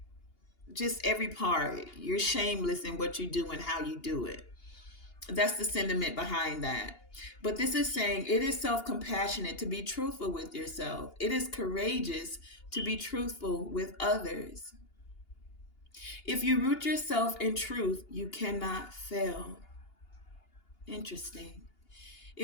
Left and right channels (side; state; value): right; late; 2.8 ms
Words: just every part. You're shameless in what you do and how you do it. That's the sentiment behind that. But this is saying it is self-compassionate to be truthful with yourself. It is courageous to be truthful with others. If you root yourself in truth, you cannot fail. Interesting.